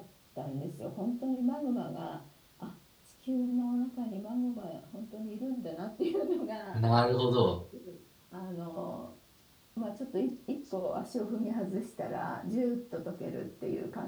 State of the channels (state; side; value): identical; both; correlation 1.00